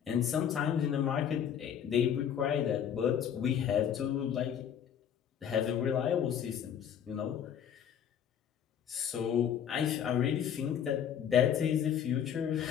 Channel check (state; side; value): quieter; right; 8.8 dB